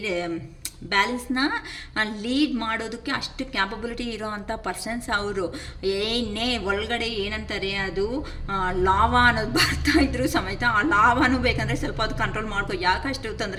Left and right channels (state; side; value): identical; both; correlation 1.00